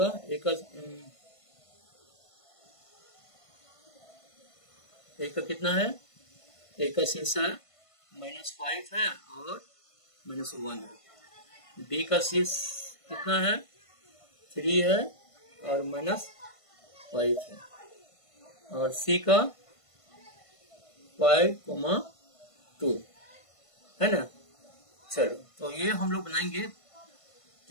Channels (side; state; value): right; late; 1.5 ms